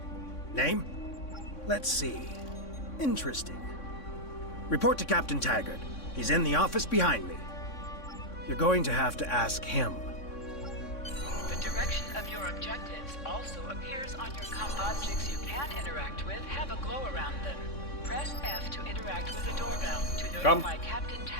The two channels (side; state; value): right; late; 3.6 ms